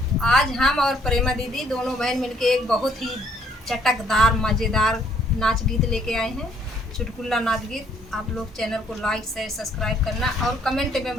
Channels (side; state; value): both; normal; correlation 0.65